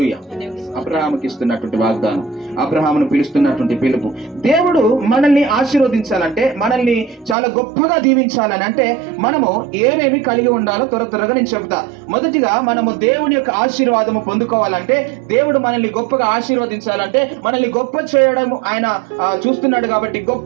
అబ్రహాముకి ఇస్తున్నటువంటి వాగ్దానం, అబ్రహామును పిలుస్తున్నటువంటి పిలుపు. దేవుడు మనల్ని ఆశీర్వదించాలంటే, మనల్ని చాలా గొప్పగా దీవించాలని అంటే మనము ఏమేమి కలిగి ఉండాలో త్వరగా నేను చెప్తా. మొదటిగా మనము దేవుని యొక్క ఆశీర్వాదము పొందుకోవాలంటే, దేవుడు మనల్ని గొప్పగా ఆశీర్వదించాలంటే, మనల్ని గొప్ప చేయడం ఆయన చూస్తున్నాడు కాబట్టి,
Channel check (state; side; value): drops out; left; at 7.4 s